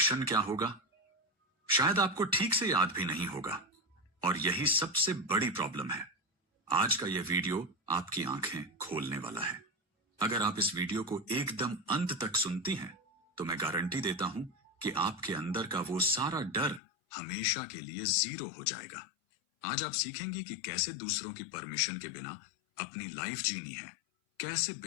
क्या होगा। शायद आपको ठीक से याद भी नहीं होगा। और यही सबसे बड़ी प्रॉब्लम है। आज का यह वीडियो आपकी आंखें खोलने वाला है। अगर आप इस वीडियो को एकदम अंत तक सुनती हैं, तो मैं गारंटी देता हूं कि आपके अंदर का वो सारा डर हमेशा के लिए जीरो हो जाएगा। आज आप सीखेंगी कि कैसे दूसरों की परमिशन के बिना अपनी लाइफ जीनी है, कैसे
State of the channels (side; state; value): right; drops out; at 16.8 s